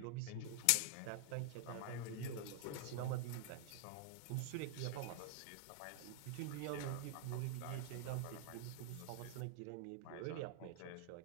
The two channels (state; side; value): different; both; correlation 0.00